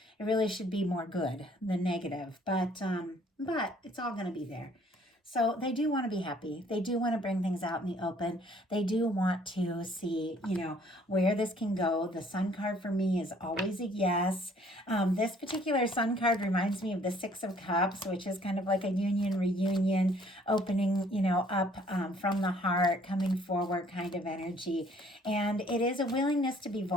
be more good than negative. But it's all going to be there. So they do want to be happy. They do want to bring things out in the open. They do want to see, where this can go. The sun card for me is always a yes. This particular sun card reminds me of the Six of Cups, which is kind of like a union, reunion, opening, up from the heart, coming forward kind of energy. And it is a willingness to be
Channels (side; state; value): both; normal; correlation 0.60